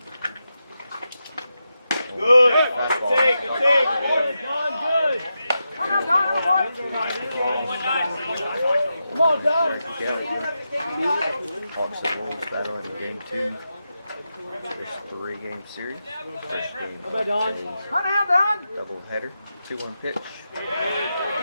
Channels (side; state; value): both; inverted; correlation -0.88